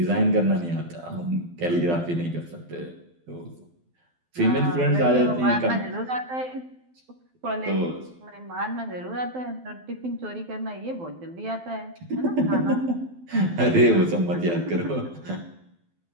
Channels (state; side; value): late; left; 12 ms